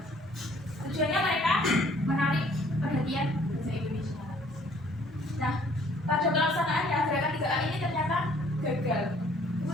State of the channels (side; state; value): both; normal; correlation 0.59